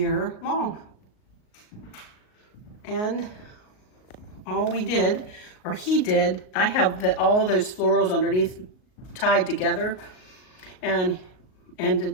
long. And all we did or he did. I have all those florals underneath tied together, and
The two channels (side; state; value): right; late; 38 ms